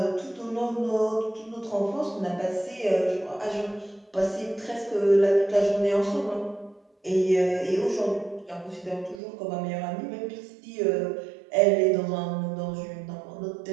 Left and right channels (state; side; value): drops out; left; at 9.2 s